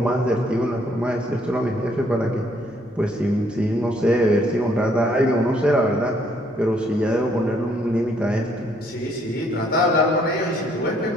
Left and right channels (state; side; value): noise; right; hum, 28 dB below the sound